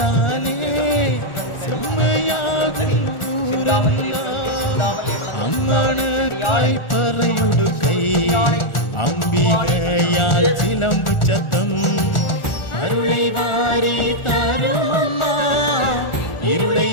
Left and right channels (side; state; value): right; late; 1.4 ms